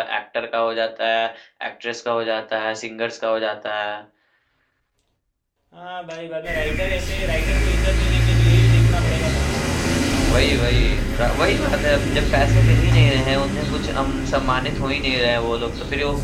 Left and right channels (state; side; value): identical; both; correlation 1.00